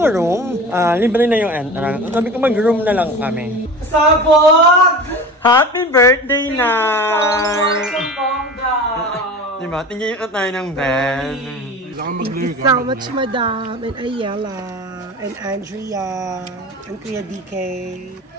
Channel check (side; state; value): both; normal; correlation 0.35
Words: room, libre na yung entrance. Sabi ko mag-room na lang kami. Sabog! Happy birthday, Nay! Bongga! Diba? Tingin ko tayo ng bed. Thank you so much, Madam, and Ayala, and Andrea, and Kuya DK,